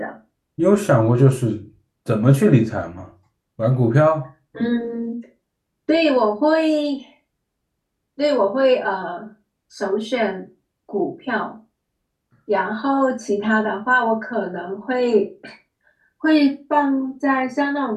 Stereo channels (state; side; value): identical; both; correlation 1.00